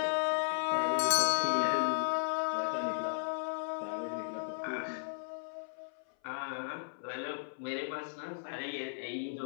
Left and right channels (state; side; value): silent; right; 54 dB below the other